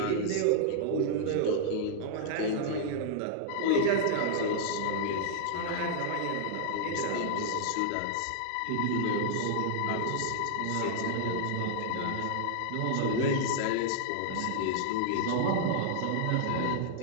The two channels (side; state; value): both; different; correlation -0.01